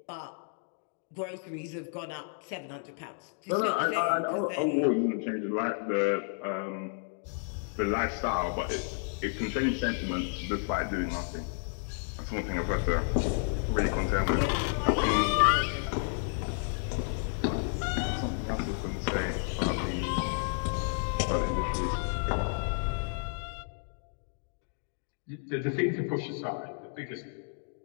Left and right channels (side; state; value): right; silent; 57 dB below the other